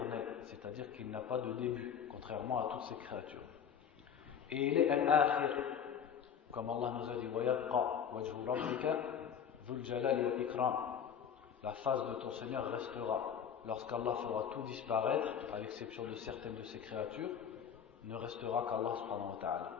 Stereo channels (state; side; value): quieter; right; 8.0 dB